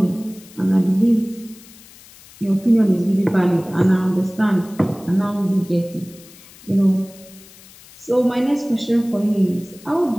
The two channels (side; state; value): left; noise; hiss, 22 dB below the sound